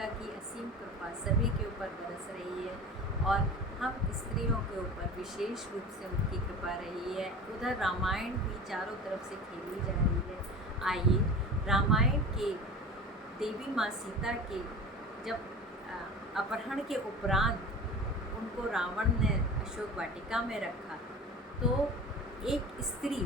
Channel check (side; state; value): both; normal; correlation 0.35